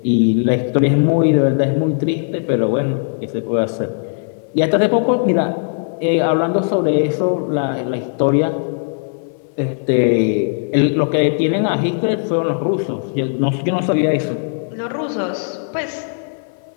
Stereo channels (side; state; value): right; silent; digital silence